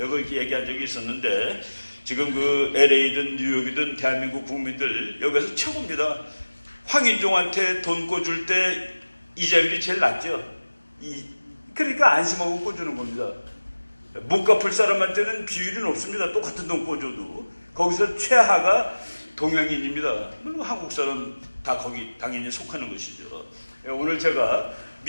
이렇게 얘기한 적이 있었는데, 지금 그 LA든 뉴욕이든 대한민국 국민들 여기서 최고입니다. 황인종한테 돈 꿔줄 때 이자율이 제일 낮죠. 그러니까 안심하고 꿔주는 겁니다. 못 갚을 사람한테는 비율이 높습니다. 똑같은 돈 꿔줘도. 거기서 최하가 동양인입니다. 한국 사람 다 거기 당연히 속하는 것이죠. 오늘 제가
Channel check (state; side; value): inverted; both; correlation -1.00